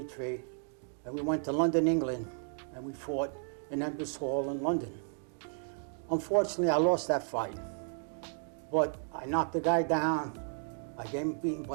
and we went to London, England, and we fought in Empress Hall in London. Unfortunately, I lost that fight, but I knocked the guy down. I gave him beaten,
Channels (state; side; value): silent; left; 55 dB below the other